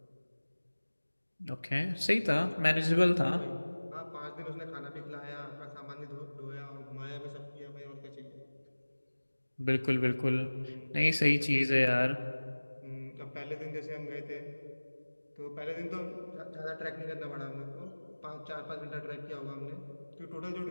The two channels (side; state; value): both; inverted; correlation -1.00